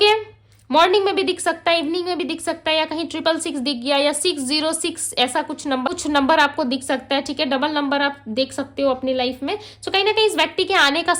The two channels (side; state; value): both; identical; correlation 1.00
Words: मॉर्निंग में भी दिख सकता है, इवनिंग में भी दिख सकता है, या कहीं 666 दिख गया, या 606 ऐसा कुछ नंबर आपको दिख सकता है, ठीक है? डबल नंबर आप देख सकते हो अपनी लाइफ में। सो कहीं ना कहीं इस व्यक्ति के आने का